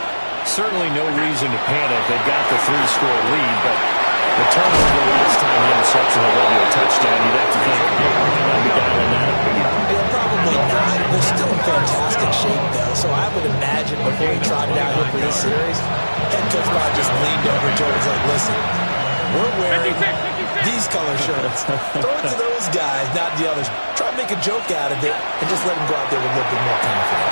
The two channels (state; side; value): inverted; both; correlation -1.00